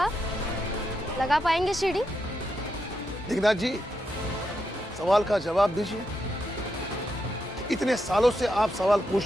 लगा पाएंगे सीढ़ी? दिग्नाथ जी, सवाल का जवाब दीजिए। इतने सालों से आप सवाल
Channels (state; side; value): normal; both; correlation 0.83